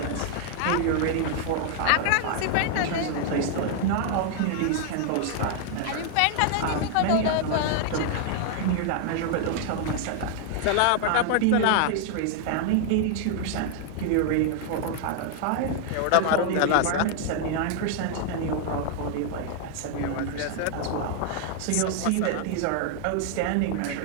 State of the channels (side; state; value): both; different; correlation 0.00